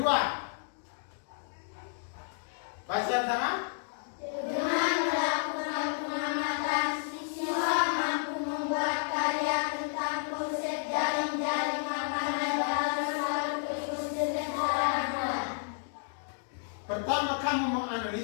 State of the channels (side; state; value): right; silent; digital silence